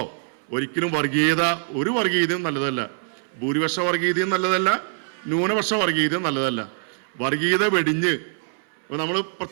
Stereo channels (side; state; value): left; silent; 63 dB below the other